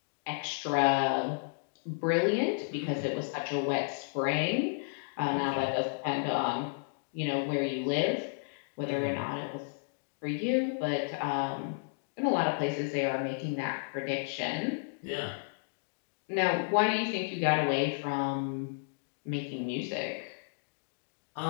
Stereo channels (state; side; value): silent; right; digital silence